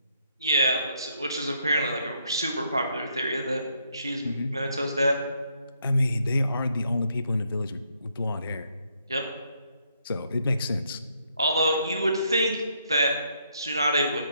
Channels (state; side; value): inverted; both; correlation -0.73